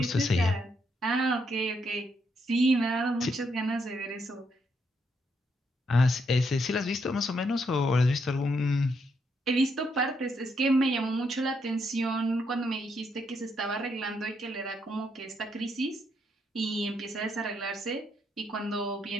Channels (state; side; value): normal; both; correlation 0.76